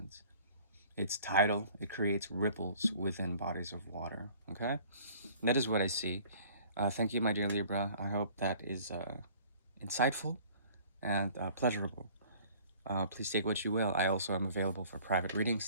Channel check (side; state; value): both; inverted; correlation -0.51